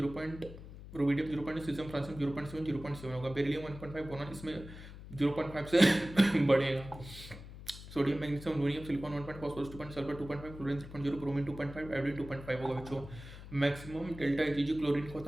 Rubidium 0.6, caesium, francium 0.7, 0.7 होगा। बेरिलियम 1.5, बोरॉन इसमें 0.5 से बढ़ेगा। Sodium, magnesium, aluminium, silicon 1.5, phosphorus 2.5, sulphur 2.5, chlorine 3.0, bromine 2.5, iodine 2.5 होगा बच्चों। मैक्सिमम डेल्टा जी क्लोरीन का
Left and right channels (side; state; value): left; noise; hum, 14 dB below the sound